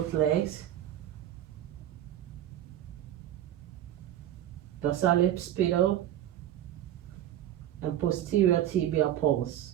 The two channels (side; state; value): left; quieter; 11.9 dB